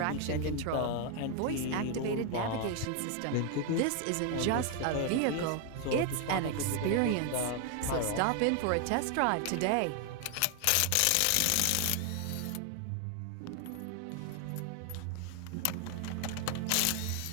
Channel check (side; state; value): both; different; correlation 0.01